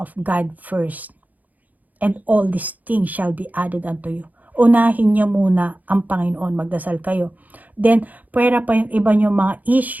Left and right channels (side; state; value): left; late; 0.079 ms